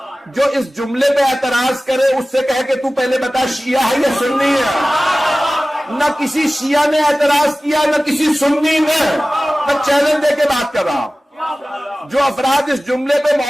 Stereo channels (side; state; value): both; normal; correlation 0.97